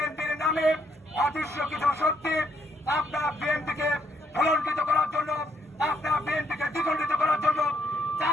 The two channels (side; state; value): both; normal; correlation 0.72